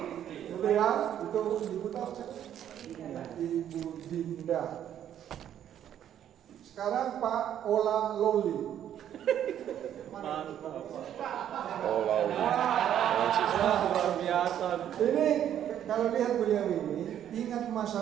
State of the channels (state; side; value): quieter; left; 10.3 dB